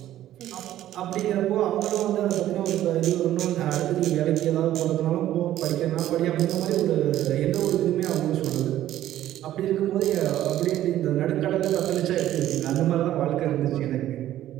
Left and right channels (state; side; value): quieter; left; 13.0 dB